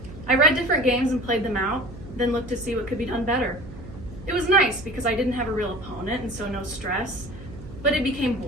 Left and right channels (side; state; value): right; noise; hum, 15 dB below the sound